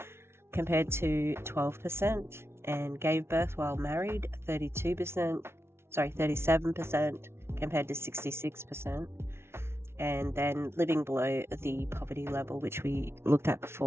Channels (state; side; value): late; left; 0.12 ms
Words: Compared to 12%, and gave birth while married, 37% compared to 66%, and then living below the poverty level, which we looked at